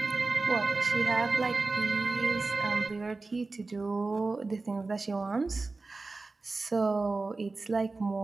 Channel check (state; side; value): quieter; left; 3.6 dB